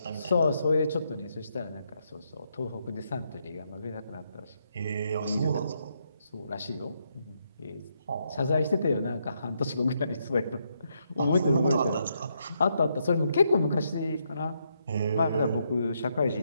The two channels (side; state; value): both; inverted; correlation -0.78